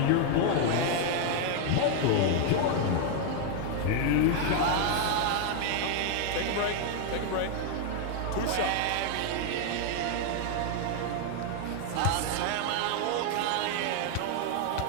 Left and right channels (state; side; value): different; both; correlation 0.00